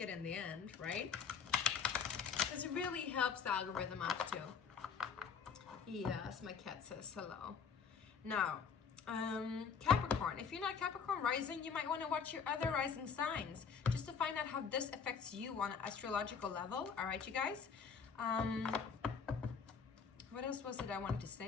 it in the end, right? Because it really helps the algorithm out too. Yes, my cat says hello. Now, Capricorn, if you're not Capricorn rising, you might want to watch your other rising signs just to find out how this affects you on an astrological level. All right, you guys? What else was it I wanted to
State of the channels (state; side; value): quieter; right; 6.3 dB